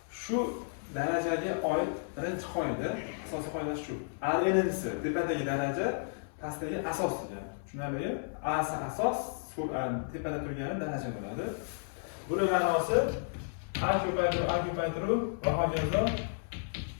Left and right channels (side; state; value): right; silent; 56 dB below the other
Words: Shu darajaga oid birinchi qoida, asosiy qoida shu. A n'si tepadagi daraja, pastdagi asos degani. Tushunarlimi? A asos, tepada turgani daraja bo'ladi. Buning ma'nosi A ko'paytiruv va hokazo